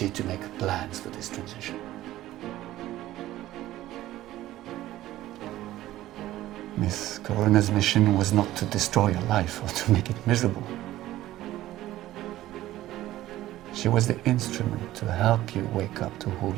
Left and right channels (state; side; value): quieter; left; 15.0 dB